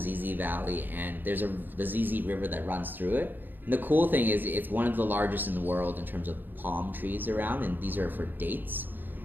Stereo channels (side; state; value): left; late; 0.091 ms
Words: Valley, and there's the Ziz River that runs through it. And the cool thing is it's one of the largest in the world in terms of palm trees around, and these are for dates.